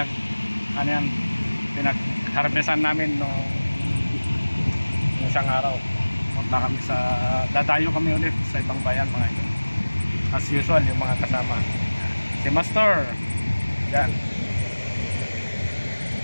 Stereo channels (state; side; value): inverted; both; correlation -1.00